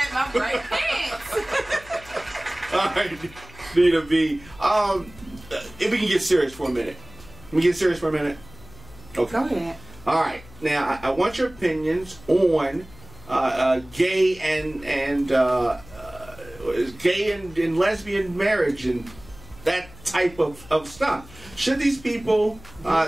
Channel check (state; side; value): noise; left; hum, 21 dB below the sound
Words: my bright pants. All right, Nina B. If we can get serious for a minute. Can we get serious for a minute? Okay. Go ahead. All right. Now, I want your opinions on gay and lesbian marriage and that type of stuff. Should these people